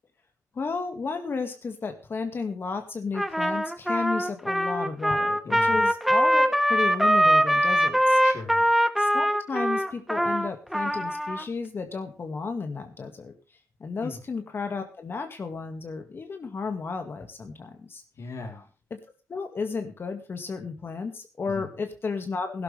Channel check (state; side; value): normal; both; correlation 0.94